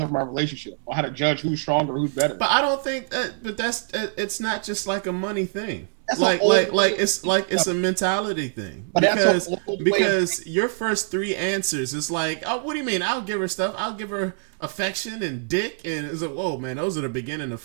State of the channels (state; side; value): silent; left; digital silence